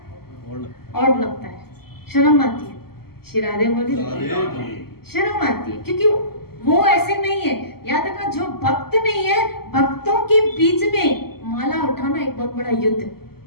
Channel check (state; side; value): late; right; 0.95 ms